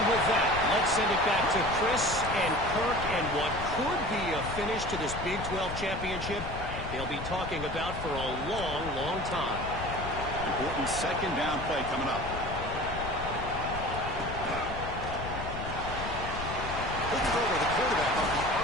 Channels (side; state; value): left; noise; rumble, 8 dB below the sound